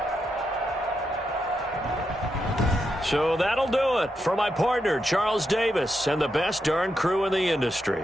So that'll do it for my partner, Charles Davis, and the best darn crew in the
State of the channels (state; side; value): normal; both; correlation 0.84